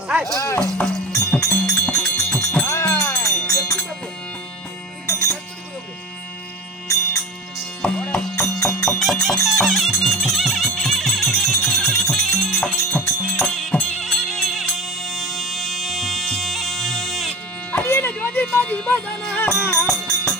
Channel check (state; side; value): normal; both; correlation 0.29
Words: அடியேன ஜோதி மாதி பதனா